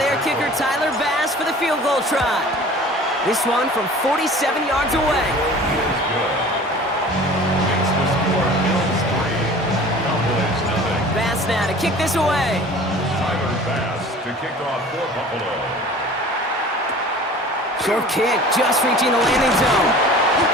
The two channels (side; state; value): both; normal; correlation 0.44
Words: kicker, Tyler Bass, for the field goal try. This one from 47 yards away. Bass now to kick this away. Tyler Bass to kick off for Buffalo. Short kick, just reaching the landing zone.